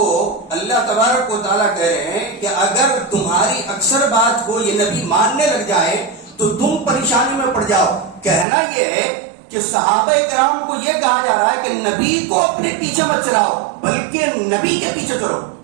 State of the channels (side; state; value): left; drops out; at 8.5 s